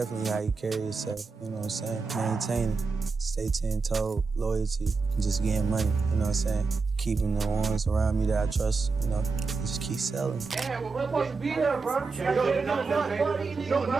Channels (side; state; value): left; quieter; 4.4 dB